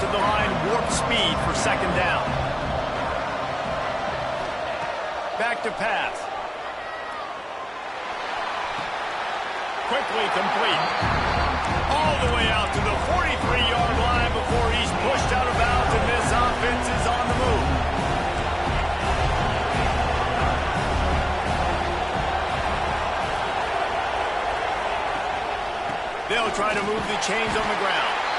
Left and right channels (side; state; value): both; identical; correlation 1.00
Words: the line warp speed for second down. Back to pass. Quickly complete. All the way out to the 43-yard line before he's pushed out of bounds, and this offense is on the move. They'll try to move the chains on the ground.